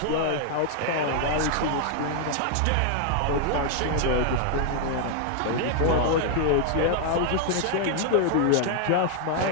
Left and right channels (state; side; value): different; both; correlation 0.00